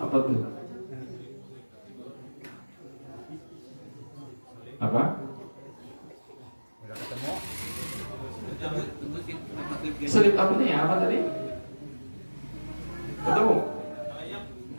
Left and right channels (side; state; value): both; inverted; correlation -1.00